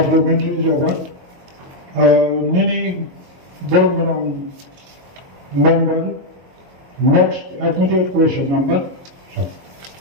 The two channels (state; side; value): late; left; 22 ms